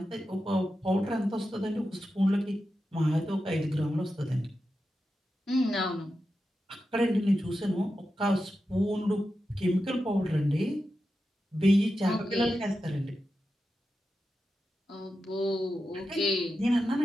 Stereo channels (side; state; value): both; normal; correlation 0.90